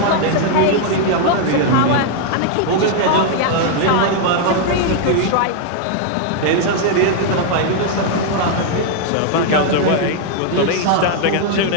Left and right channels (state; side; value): different; both; correlation 0.00